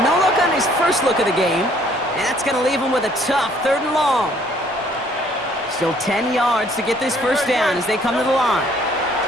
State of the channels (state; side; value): normal; both; correlation 0.61